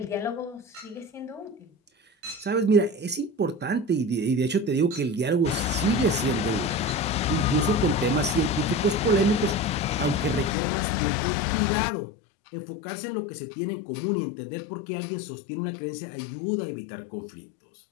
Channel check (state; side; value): drops out; right; at 10.6 s